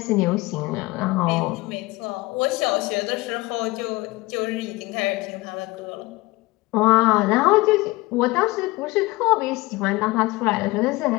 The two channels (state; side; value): quieter; right; 21.4 dB